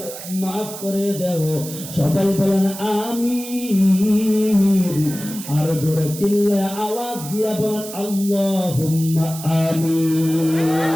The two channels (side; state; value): right; noise; hiss, 11 dB below the sound